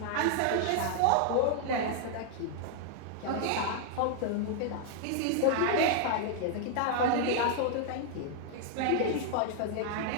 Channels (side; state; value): both; different; correlation 0.00